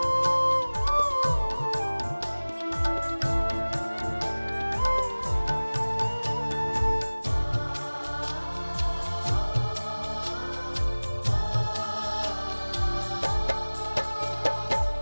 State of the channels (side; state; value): both; inverted; correlation -1.00